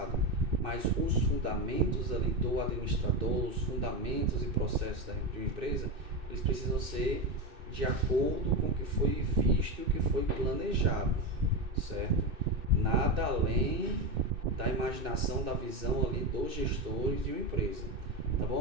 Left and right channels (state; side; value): late; left; 2.6 ms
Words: Mas os fundamentos ali do administrador, os fundamentos e processos de uma empresa, eles precisam ser de acordo com o que foi visto e o que foi planejado, certo? Nada além da imaginação, da visão ali dos gestores de uma empresa, tá